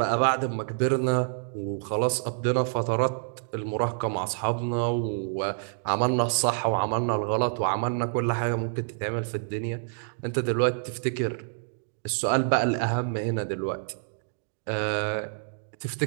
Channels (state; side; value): silent; left; digital silence